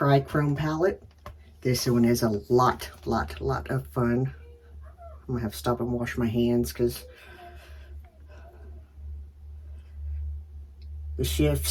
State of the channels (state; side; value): identical; both; correlation 1.00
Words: Palette. This one is a lot of fun. I'm gonna have to stop and wash my hands because the